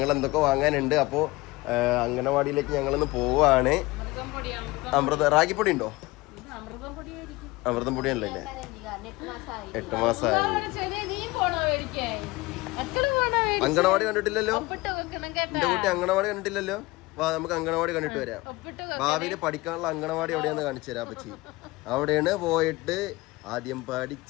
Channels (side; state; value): right; quieter; 21.3 dB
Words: എന്തൊക്കെ വാങ്ങാനുണ്ട്. അപ്പോൾ അംഗനവാടിയിലേക്ക് ഞങ്ങളിന്ന് പോവാണ്. റാഗിപ്പൊടി ഉണ്ടോ? അമൃതം പൊടിയല്ലേ? 8 മാസമായി. അംഗനവാടി കണ്ടിട്ടില്ലല്ലോ എന്റെ കുട്ടി, അംഗനവാടി കണ്ടിട്ടില്ലല്ലോ. വാ, നമുക്ക് അംഗനവാടി കണ്ടിട്ട് വരാം. ഭാവിയിൽ പഠിക്കാനുള്ള അംഗനവാടി എവിടെയാന്ന് കാണിച്ചു തരാം പറ്റി. അവിടെയാണ് പോയിട്ട് ആദ്യം